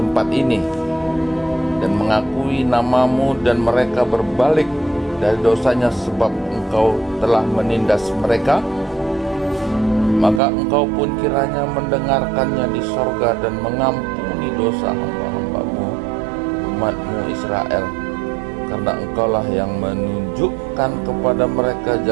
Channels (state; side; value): drops out; left; at 10.4 s